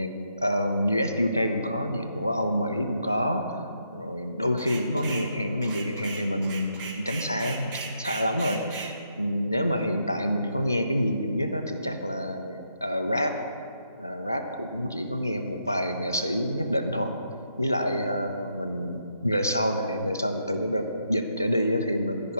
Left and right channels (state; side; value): inverted; both; correlation -0.78